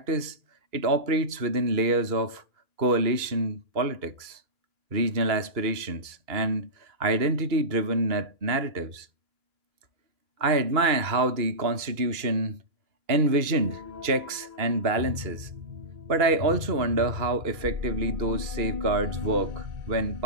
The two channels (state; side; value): late; left; 2.8 ms